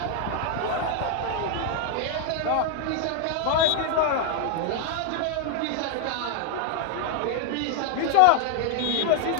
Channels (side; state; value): both; different; correlation 0.00